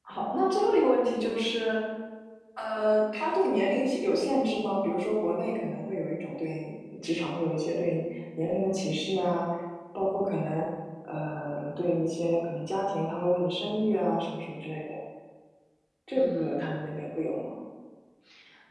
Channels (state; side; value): identical; both; correlation 1.00